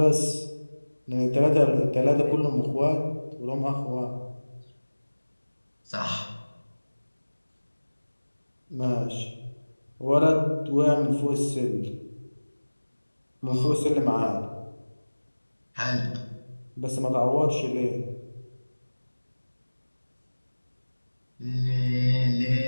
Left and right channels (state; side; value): inverted; both; correlation -1.00